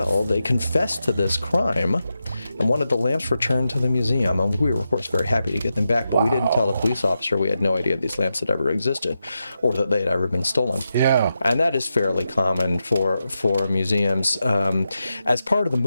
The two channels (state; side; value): inverted; both; correlation -0.88